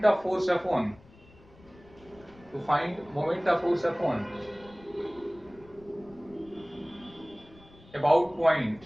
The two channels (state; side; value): noise; left; rumble, 24 dB below the sound